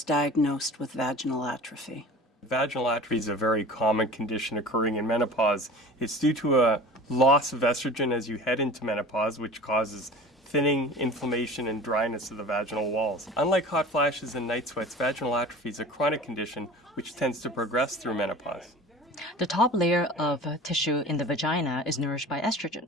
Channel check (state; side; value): normal; both; correlation 0.39